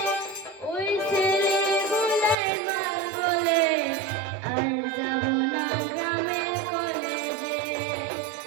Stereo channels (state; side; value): drops out; left; at 2.4 s